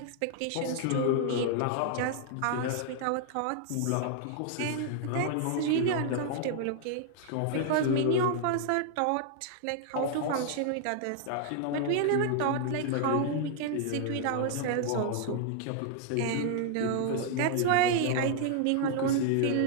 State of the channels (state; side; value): different; both; correlation 0.00